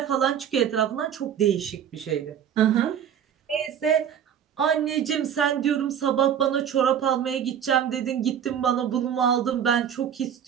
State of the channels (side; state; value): left; quieter; 8.9 dB